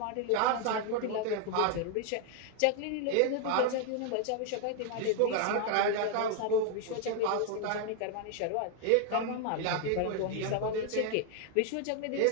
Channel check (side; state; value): both; different; correlation 0.00